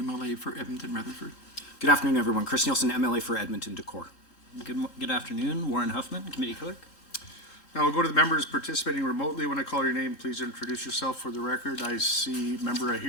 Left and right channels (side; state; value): right; late; 3.1 ms